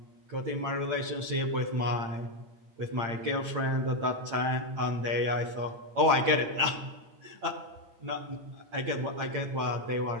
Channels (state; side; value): late; left; 8.8 ms